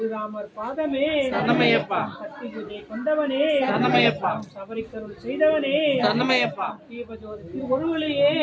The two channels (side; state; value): both; identical; correlation 1.00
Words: பாதமே கத்திகுதை கொண்டவனே சபரிக்கருள் செய்தவனே தீபஜோதி திருவொருளையே